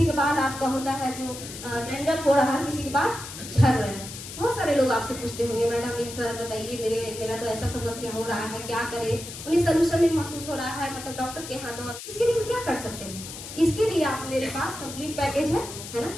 का बाल आपका होता है जो डैंड्रफ हो रहा है, किसी के बाल झड़ रहे हैं। बहुत सारे लोग आपसे पूछते होंगे मैडम एक सर बताइए मेरा तो ऐसा समस्या हो रहा है क्या करे, उन्हें सोल्यूशन नहीं महसूस हो रहा है, मतलब डॉक्टर के यहाँ दो। इसके लिए हम क्या कर सकते हैं, इसके लिए आप मेरे पास कंप्लीट पैकेज है ना।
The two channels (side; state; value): left; noise; hiss, 11 dB below the sound